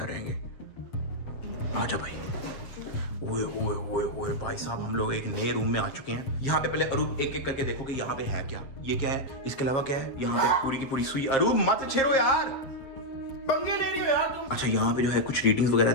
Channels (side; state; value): right; late; 7.5 ms